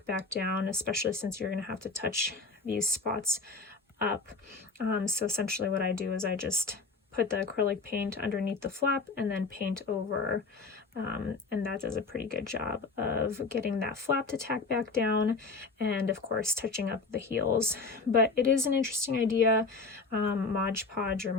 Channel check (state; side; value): quieter; right; 4.0 dB